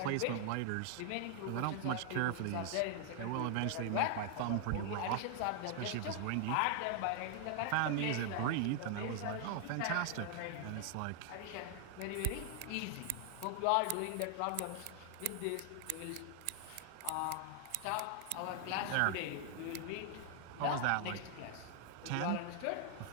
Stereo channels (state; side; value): different; both; correlation 0.00